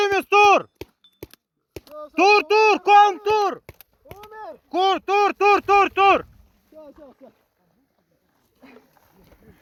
тур! Тур! Ком тур! Тур!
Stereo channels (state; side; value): identical; both; correlation 1.00